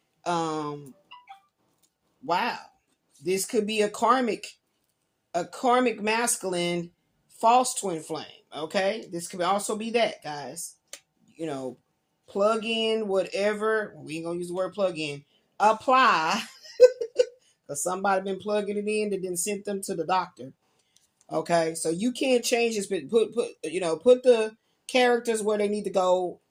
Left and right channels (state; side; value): identical; both; correlation 1.00